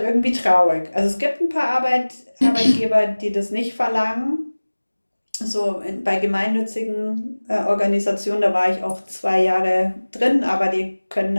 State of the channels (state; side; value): inverted; both; correlation -1.00